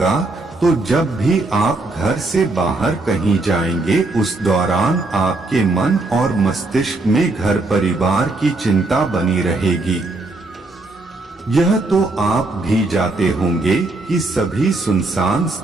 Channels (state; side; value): quieter; left; 3.1 dB